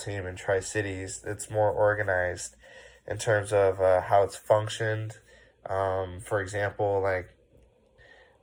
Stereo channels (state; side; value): identical; both; correlation 1.00